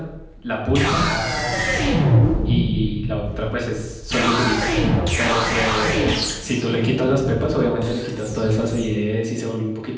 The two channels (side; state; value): both; identical; correlation 1.00